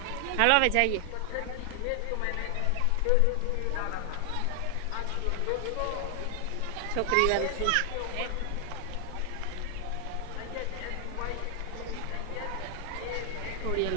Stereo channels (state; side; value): different; both; correlation 0.00